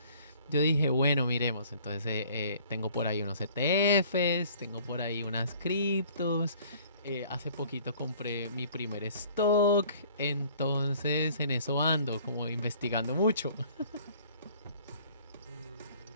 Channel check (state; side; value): inverted; both; correlation -0.54